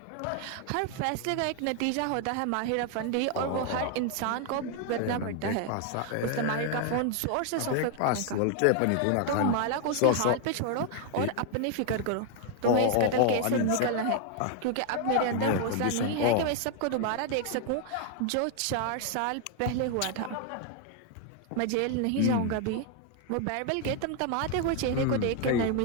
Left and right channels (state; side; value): different; both; correlation 0.01